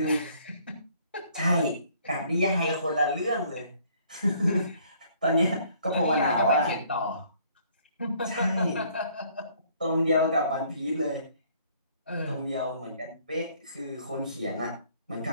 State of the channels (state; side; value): inverted; both; correlation -0.61